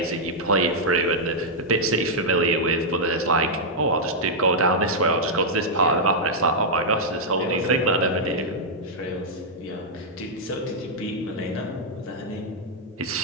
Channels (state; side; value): normal; both; correlation -0.06